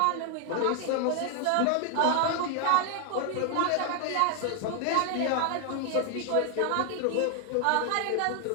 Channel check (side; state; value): both; different; correlation 0.00